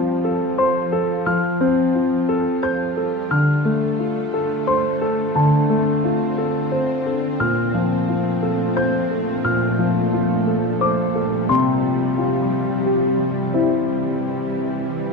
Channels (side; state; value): both; normal; correlation 0.36